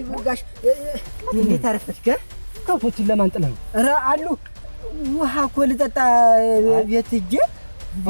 ጋሽ እንዴት አረፈች ከብቶችን ለማንጥለው ኧረ አሉ ውሃ እኮ ልጠጣ ቤት ሂጅ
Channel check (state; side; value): inverted; both; correlation -1.00